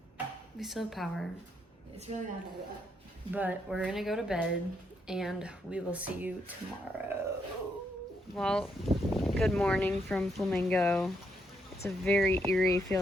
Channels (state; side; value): normal; both; correlation 0.77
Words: we still have power. It's really not bad. But we're gonna go to bed and we will see you tomorrow. Well, good morning from Flamingo. It's a very eerie